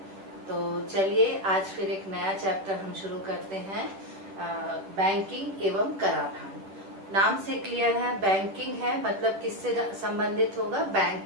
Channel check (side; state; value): left; late; 10 ms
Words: तो चलिए आज फिर एक नया चैप्टर हम शुरू करते हैं। बैंकिंग एवं कराधान। नाम से क्लियर है, बैंकिंग है मतलब किससे संबंधित होगा? बैंक